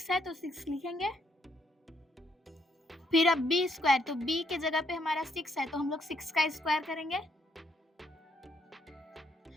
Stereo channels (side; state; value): both; normal; correlation 0.72